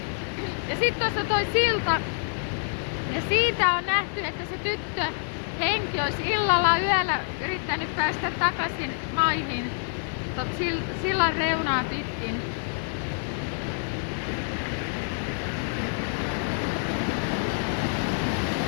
Ja sitten tuossa toi silta. Ja siitä on nähty, että se tyttö henki olisi illalla yöllä yrittänyt päästä takaisin maihin. Sillan reunaa pitkin.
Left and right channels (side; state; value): right; silent; 60 dB below the other